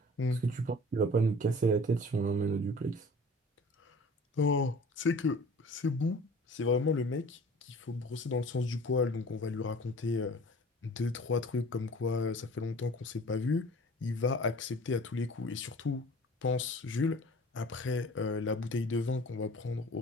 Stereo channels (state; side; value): normal; both; correlation 0.45